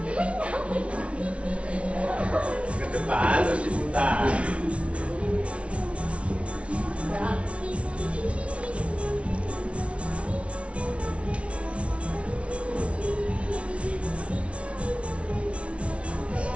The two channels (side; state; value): left; late; 0.061 ms